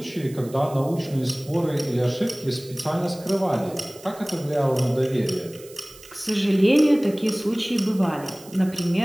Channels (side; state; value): right; noise; hiss, 21 dB below the sound